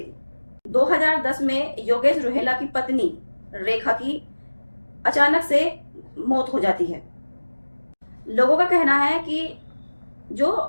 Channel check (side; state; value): both; inverted; correlation -1.00